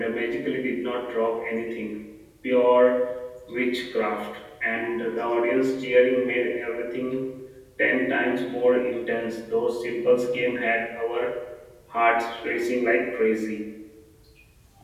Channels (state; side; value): identical; both; correlation 1.00